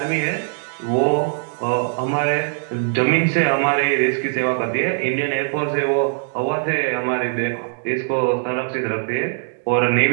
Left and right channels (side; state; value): left; silent; digital silence